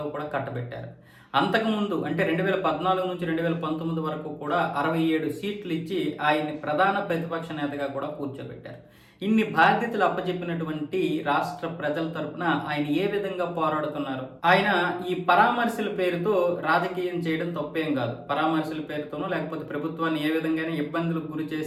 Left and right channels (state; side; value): identical; both; correlation 1.00